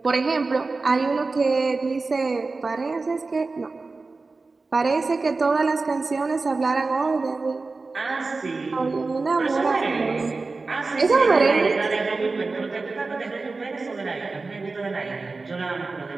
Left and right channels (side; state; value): left; quieter; 3.8 dB